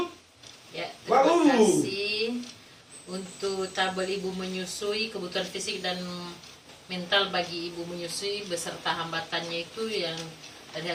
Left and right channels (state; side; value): identical; both; correlation 1.00